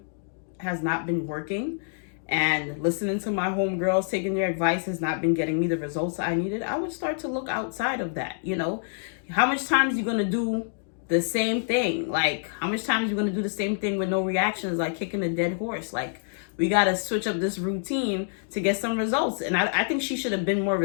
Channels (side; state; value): right; silent; digital silence